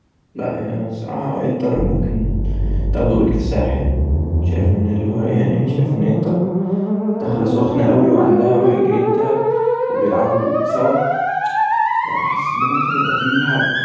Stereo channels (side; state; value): both; identical; correlation 1.00